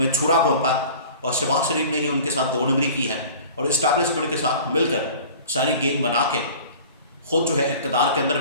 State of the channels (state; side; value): inverted; both; correlation -0.43